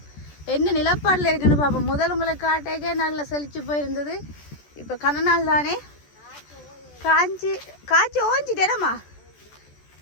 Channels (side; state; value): right; late; 14 ms